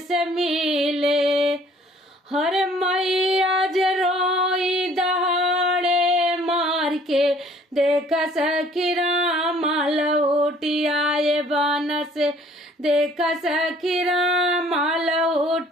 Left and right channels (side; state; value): both; normal; correlation 0.56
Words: मिले, हर मैया रोई दहाड़े मार के, देख सखी राम लौटी आए बन से, देख सखी राम